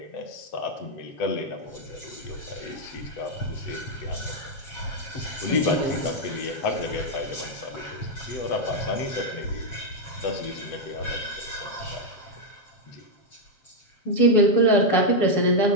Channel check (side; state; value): right; late; 7.4 ms